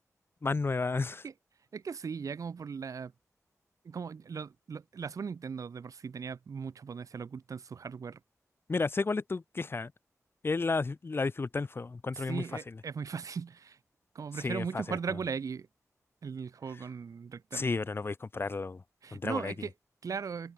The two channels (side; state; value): both; normal; correlation 0.75